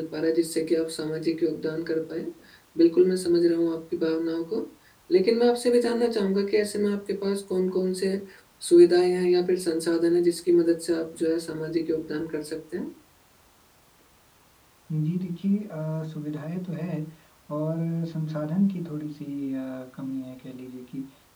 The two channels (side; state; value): both; identical; correlation 1.00